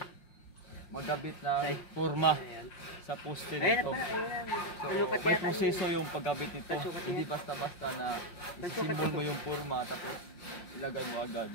magkabit ng forma sa poste nito. So may proseso yung pagkabit nito. Hindi basta-basta na isisimbol mo yung forma tapos ilagay mo agad.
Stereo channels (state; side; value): late; right; 5.6 ms